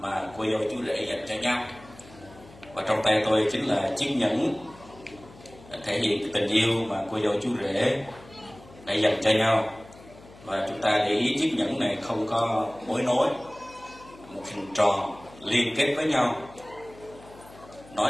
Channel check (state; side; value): noise; left; hum, 22 dB below the sound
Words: cô dâu chú rể dành cho nhau. Và trong tay tôi chính là chiếc nhẫn thể hiện tình yêu mà cô dâu chú rể đã dành cho nhau. Và chúng ta để ý chiếc nhẫn này không có mối nối, một hình tròn liên kết với nhau, nói